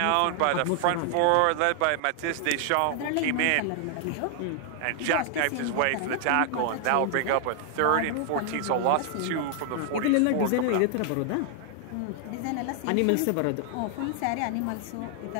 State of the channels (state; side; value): different; both; correlation 0.00